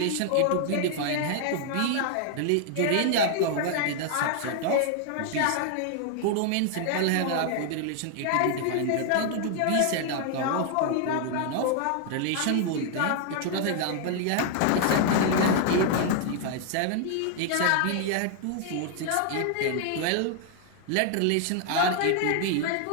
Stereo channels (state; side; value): different; both; correlation 0.00